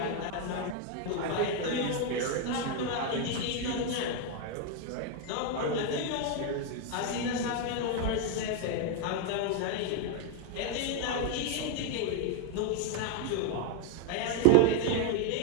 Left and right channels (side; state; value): both; different; correlation 0.01